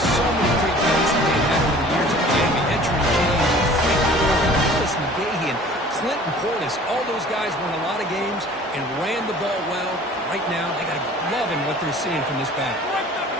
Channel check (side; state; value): both; normal; correlation 0.47